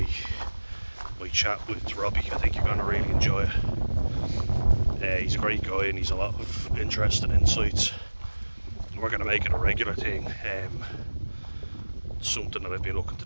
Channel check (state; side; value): inverted; both; correlation -1.00